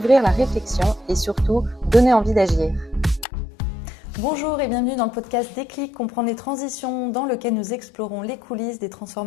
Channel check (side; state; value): right; drops out; at 3.2 s